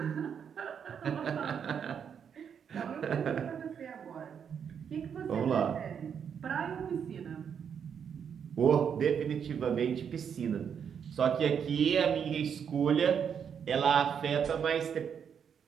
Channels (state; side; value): quieter; left; 7.6 dB